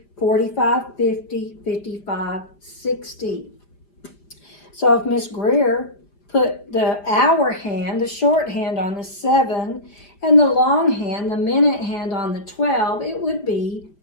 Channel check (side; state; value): right; late; 5.0 ms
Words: 45, 50, 55, 60. So if Miss Greer put the hour hand, the shorthand on the 7, and the long hand, the minute hand on the 12, it would be